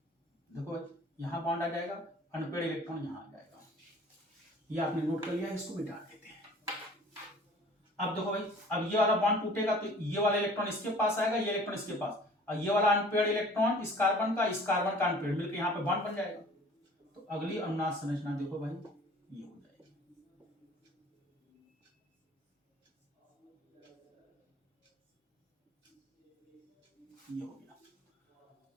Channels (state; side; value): normal; both; correlation 0.49